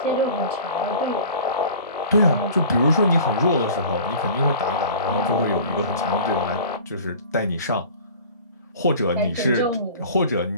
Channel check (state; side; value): inverted; both; correlation -0.42